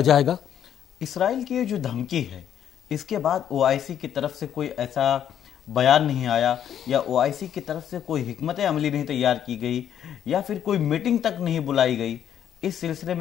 گا. اسرائیل کی یہ جو دھمکی ہے اس کے بعد OIC کی طرف سے کوئی ایسا بیان نہیں آیا, یا OIC کی طرف سے کوئی حکمت عملی نہیں تیار کی گئی, یا پھر کوئی میٹنگ تک نہیں بلائی گئی. اس سلسلے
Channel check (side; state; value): right; quieter; 9.8 dB